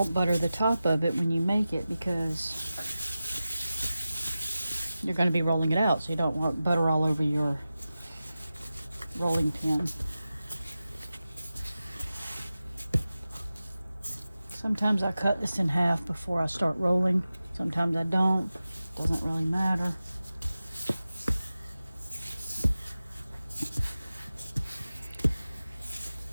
butter the top of it when you make it, because you're going to be rolling it out, so you don't want butter all over your rolling pin. Sometimes I cut this in half before I start rolling. Sometimes I don't. Doesn't really matter.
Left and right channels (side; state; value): both; inverted; correlation -0.94